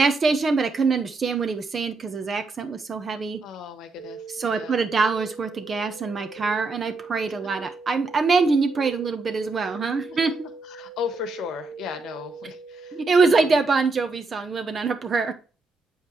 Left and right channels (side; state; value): left; quieter; 3.7 dB